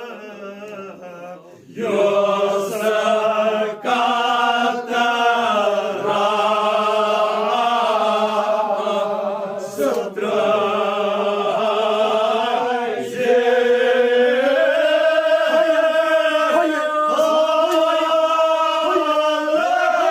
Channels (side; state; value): both; identical; correlation 1.00